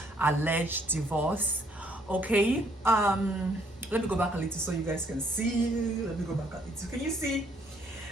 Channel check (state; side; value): normal; both; correlation 0.66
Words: alleged divorce. Okay, let me go back a little so you guys can see. Let me go back a little. Can you see?